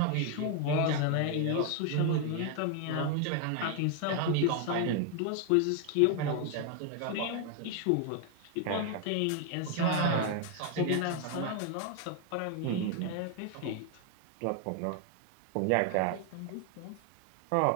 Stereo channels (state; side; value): different; both; correlation 0.01